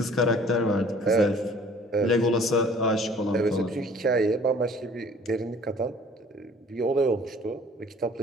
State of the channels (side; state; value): both; normal; correlation 0.52